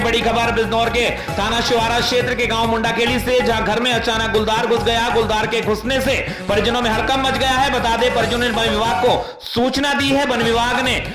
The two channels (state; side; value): identical; both; correlation 1.00